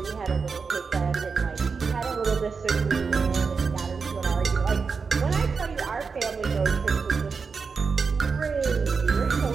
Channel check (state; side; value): quieter; left; 5.2 dB